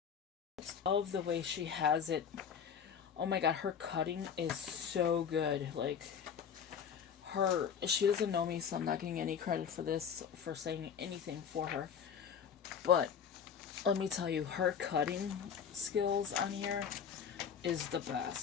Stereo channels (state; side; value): quieter; right; 7.4 dB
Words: I love the way she has it. Oh my god, her cutting is so good. Like, she doesn't know me, so I'm not getting any credit for this, for saying anything for her. But let me tell you, her cutting skills on here is the